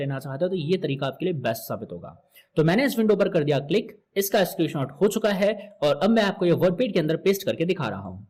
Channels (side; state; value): both; identical; correlation 1.00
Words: चाहते हो तो ये तरीका आपके लिए बेस्ट साबित होगा। तो मैंने इस विंडो पर कर दिया क्लिक, इसका स्क्रीनशॉट हो चुका है और अब मैं आपको ये वर्डपेड के अंदर पेस्ट करके दिखा रहा हूं।